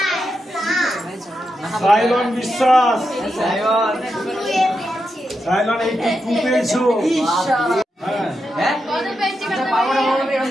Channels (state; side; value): normal; both; correlation 0.86